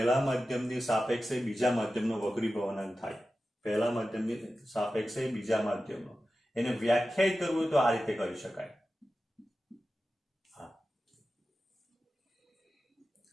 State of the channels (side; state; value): both; normal; correlation 0.93